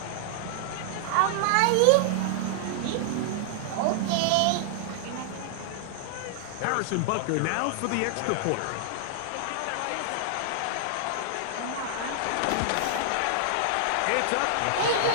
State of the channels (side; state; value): both; different; correlation -0.01